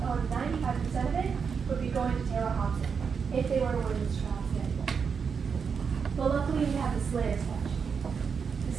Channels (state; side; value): quieter; left; 6.1 dB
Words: owned, 95% of it would be going to Taylor Hobson if they were to win this trial today. But luckily we have the Slayer statute. The